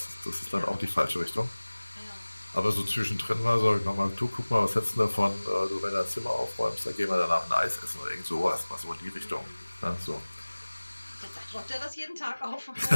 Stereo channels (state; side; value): inverted; both; correlation -1.00